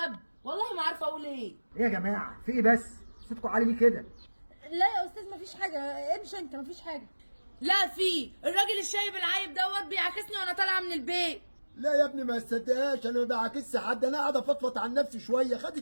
والله ما عارفه اقول ايه. ايه يا جماعه في ايه بس؟ صوتكم عالي ليه كده؟ لا يا استاذ مفيش حاجه، امشي انت مفيش حاجه. لا في الراجل الشايب العايب دوت بيعاكسني وانا طالعه من البيت. لا يا ابني ما تصدقهاش، انا ما بعاكسش حد، انا قاعد افضفض عن نفسي شويه.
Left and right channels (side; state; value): both; inverted; correlation -1.00